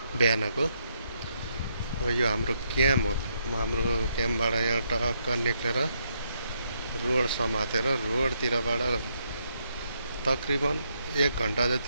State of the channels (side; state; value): both; inverted; correlation -0.76